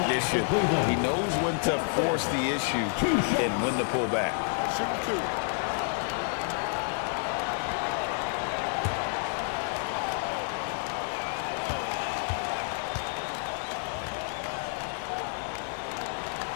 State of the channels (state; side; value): silent; right; 58 dB below the other